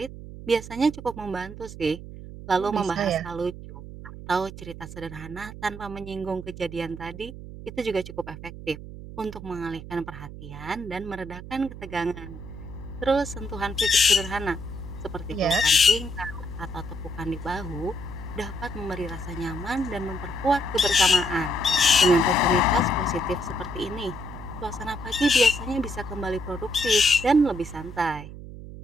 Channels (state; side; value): noise; right; hum, 12 dB below the sound